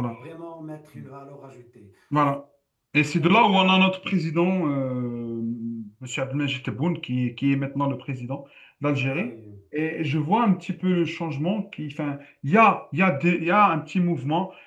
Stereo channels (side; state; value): both; identical; correlation 1.00